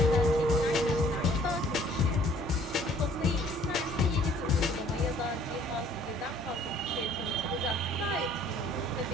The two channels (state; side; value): normal; both; correlation 0.57